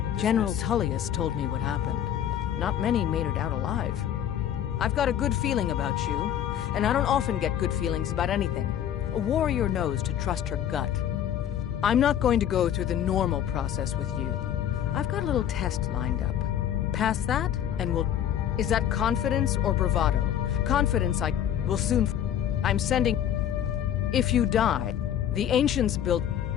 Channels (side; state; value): right; quieter; 10.1 dB